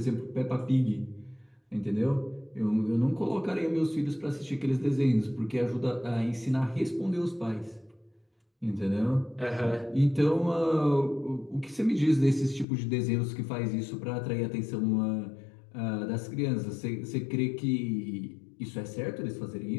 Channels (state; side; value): drops out; right; at 12.7 s